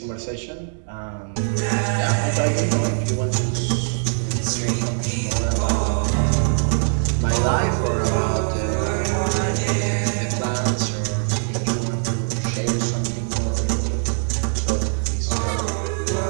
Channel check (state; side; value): silent; left; digital silence